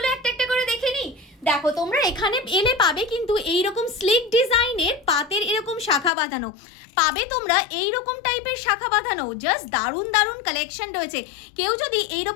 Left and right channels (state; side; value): drops out; right; at 6.1 s